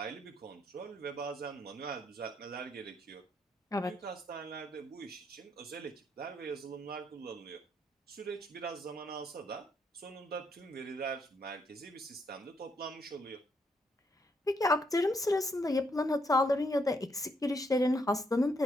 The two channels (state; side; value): normal; both; correlation 0.75